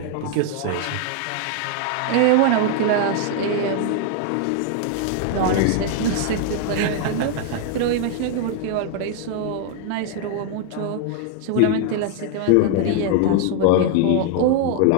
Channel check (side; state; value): both; different; correlation 0.00